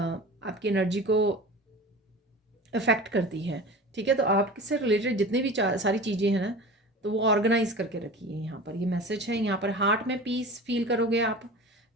को अफेक्ट करती है। ठीक है, तो आपसे रिलेटेड जितने भी सारी चीज़ें हैं ना, तो वो ऑर्गेनाइज करके रखिए। यहाँ पर ये मैसेज है। यहाँ पर हार्ट में पीस फील करोगे आप,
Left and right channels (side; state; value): both; normal; correlation 0.35